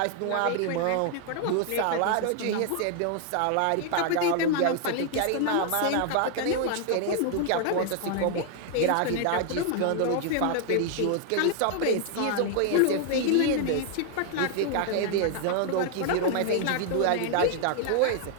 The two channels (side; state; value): both; different; correlation 0.00